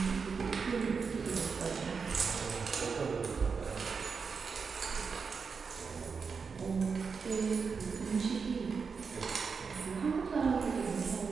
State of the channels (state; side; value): quieter; left; 5.4 dB